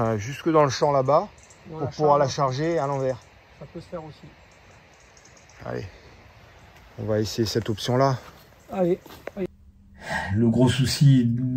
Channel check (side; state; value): both; identical; correlation 1.00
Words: jusque dans le champ là-bas pour pouvoir la charger à l'envers. Ça peut se faire aussi. Allez, on va essayer cette option-là. Allez. Le gros souci